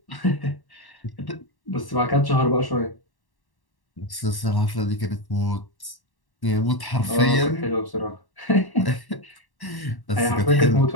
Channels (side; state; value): right; late; 1.1 ms